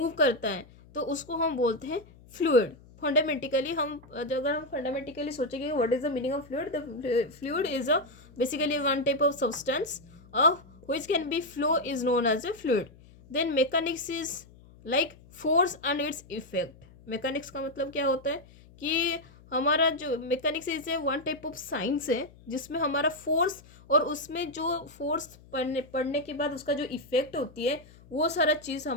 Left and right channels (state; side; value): noise; left; hum, 23 dB below the sound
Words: करता है तो उसको हम बोलते हैं फ्लूइड. फंडामेंटिकली हम अगर हम फंडामेंटिकली सोचेंगे what is the meaning of fluid. The fluid is a basically one type of substance of which can be flow is known as a fluid. Then mechanics is like force and its effect. mechanics का मतलब क्या होता है कि हमारा जो mechanics is a one type of science है जिसमें हमारा फोर्स और उसमें जो फोर्स पढ़ने के बाद उसका जो इफेक्ट होती है वो सारा चीज़